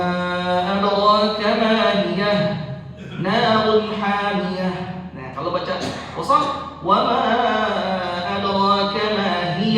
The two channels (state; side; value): identical; both; correlation 1.00